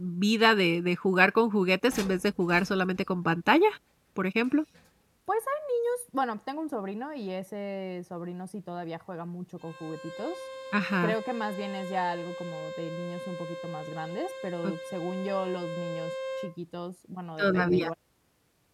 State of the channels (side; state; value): both; identical; correlation 1.00